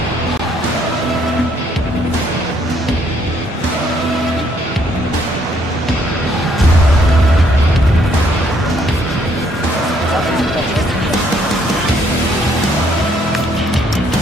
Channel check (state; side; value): normal; both; correlation 0.68